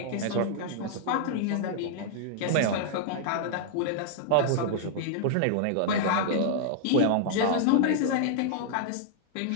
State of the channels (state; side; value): different; both; correlation -0.01